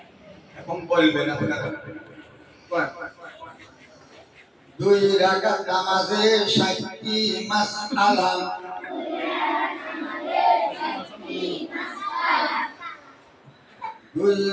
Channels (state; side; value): identical; both; correlation 1.00